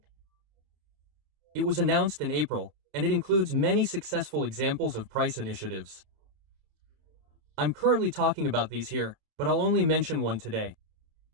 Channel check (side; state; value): left; late; 29 ms